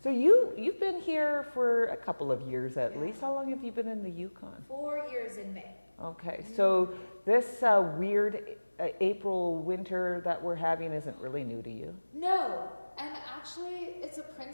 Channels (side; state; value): both; inverted; correlation -1.00